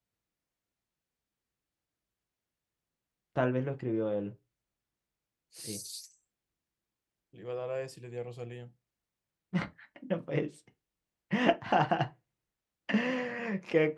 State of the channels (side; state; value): both; identical; correlation 1.00